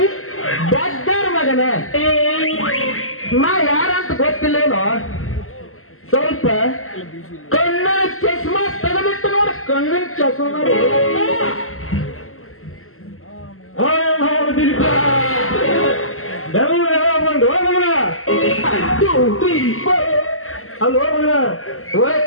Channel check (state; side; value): late; right; 0.62 ms